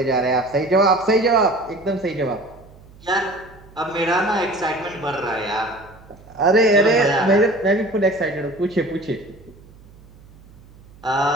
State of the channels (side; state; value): right; noise; hum, 23 dB below the sound